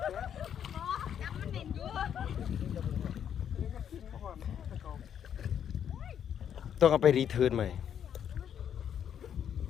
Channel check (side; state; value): right; quieter; 8.9 dB